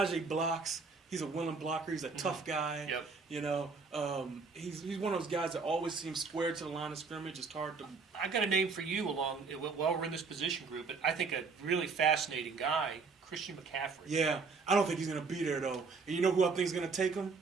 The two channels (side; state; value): left; quieter; 4.7 dB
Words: blocks. He's a willing blocker. He's a tough guy. Yep. You know, he's one of those guys that always seems square to the line of scrimmage. It's hard to. I got a name for you while we're in this position group, but I think a really fascinating guy, Christian McCaffrey. Yeah, I don't think he's going to be there though. And you know who I think is going to take him?